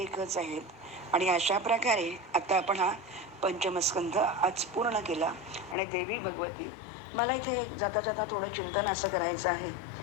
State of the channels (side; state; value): right; drops out; at 5.8 s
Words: आहेत. आणि अशा प्रकारे आता आपण हा पंचमस्कंध आज पूर्ण केला. आणि देवी भगवती, मला इथे जाता जाता थोडं चिंतन असं करायचं आहे